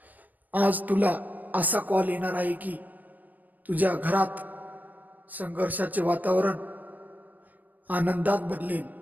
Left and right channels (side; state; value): left; late; 0.084 ms